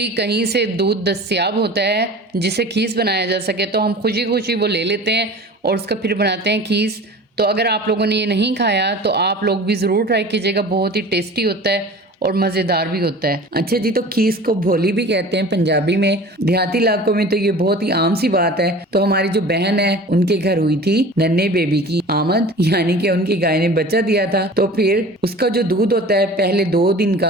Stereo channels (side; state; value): both; normal; correlation 0.40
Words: कहीं से दूध दस्तियाब होता है जिसे खीस बनाया जा सके तो हम खुशी खुशी वो ले लेते हैं और उसका फिर बनाते हैं खीस। तो अगर आप लोगों ने ये नहीं खाया तो आप लोग भी ज़रूर ट्राई कीजिएगा, बहुत ही टेस्टी होता है और मज़ेदार भी होता है। अच्छा जी, तो खीस को भोली भी कहते हैं पंजाबी में। देहाती इलाकों में तो ये बहुत ही आम सी बात है। तो हमारी जो बहन है उनके घर हुई थी नन्हे बेबी की आमद, यानी कि उनकी गाय ने बच्चा दिया था। तो फिर उसका जो दूध होता है पहले 2 दिन